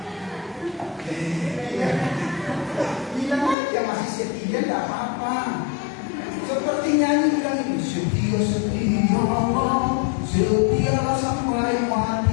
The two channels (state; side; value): drops out; right; at 3.6 s